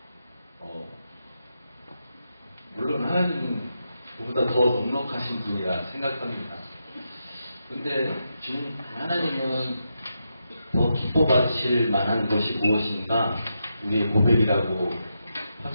물론 하나님은 그보다 더 넉넉하신 분이라 생각합니다. 근데 하나님은 더 기뻐받으실 만한 것이 무엇인가 우리의 고백이라고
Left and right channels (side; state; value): both; inverted; correlation -0.85